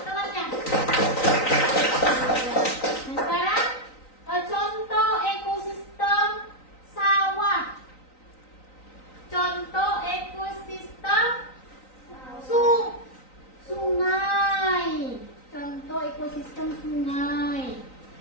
Nah, sekarang contoh ekosistem sawah. Contoh ekosistem sungai. Contoh ekosistem sungai.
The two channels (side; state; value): right; late; 3.9 ms